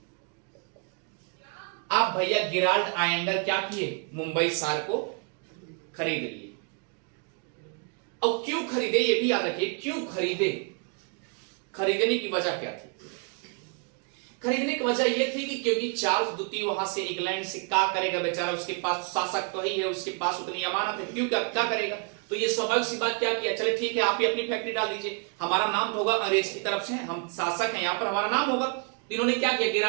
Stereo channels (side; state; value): left; quieter; 38.0 dB